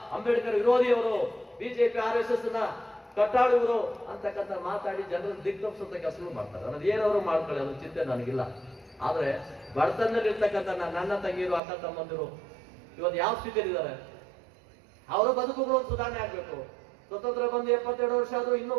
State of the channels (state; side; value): drops out; left; at 11.6 s